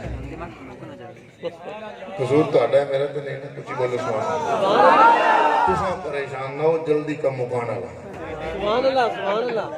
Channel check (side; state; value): both; identical; correlation 1.00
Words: قصور تو آڈا ہے میرا تو نہیں کچھ بولو سبحان اللہ تساں پریشان نہ ہو جلدی کا مکانا لگا